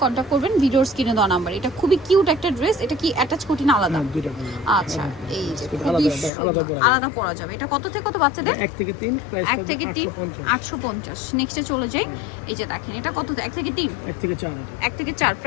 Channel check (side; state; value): right; drops out; at 6.3 s